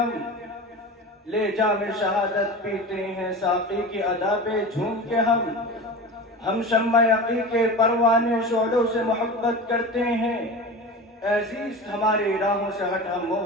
ले जामे शहादत पीते हैं साक़ी की अदा पे झूम के हम शम्मा यक़ी के परवाने शोलों से मोहब्बत करते हैं, अज़ीज़ हमारी राहों से हट हम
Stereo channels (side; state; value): both; normal; correlation 0.31